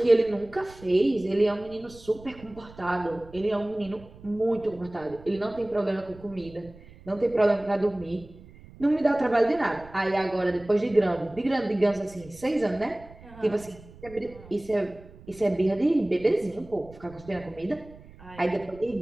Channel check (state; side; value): noise; right; rumble, 21 dB below the sound